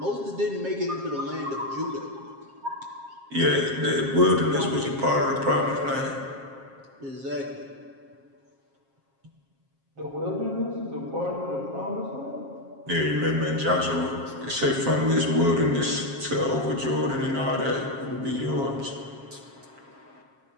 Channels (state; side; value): late; left; 7.4 ms